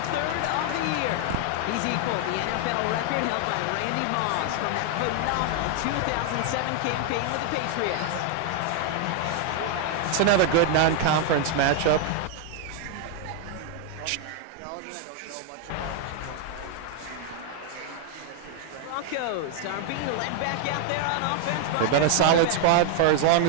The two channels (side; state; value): both; different; correlation 0.00